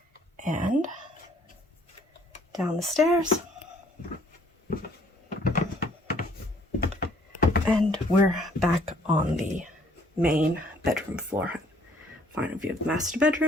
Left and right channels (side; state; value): both; normal; correlation 0.61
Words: And down the stairs. And we're back on the main bedroom floor. Final view of the master